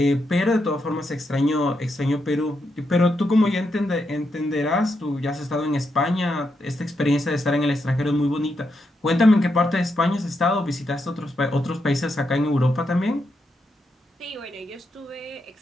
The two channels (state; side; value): normal; both; correlation 0.82